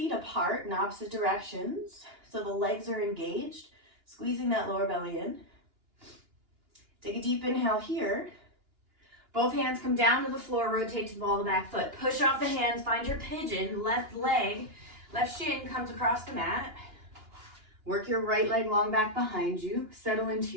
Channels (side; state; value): left; late; 2.9 ms